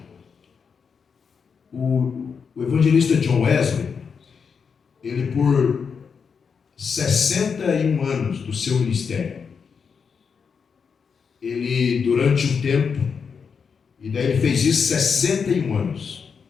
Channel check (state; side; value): quieter; right; 6.0 dB